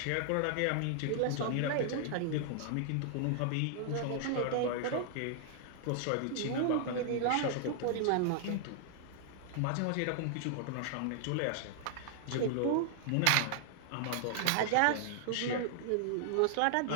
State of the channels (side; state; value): both; different; correlation 0.00